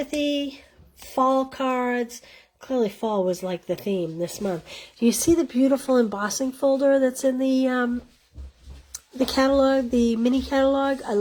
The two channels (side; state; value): both; identical; correlation 1.00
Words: fall cards. Clearly fall was like the theme this month. Do you see the beautiful embossing folder that's in the catalog, the mini catalog? I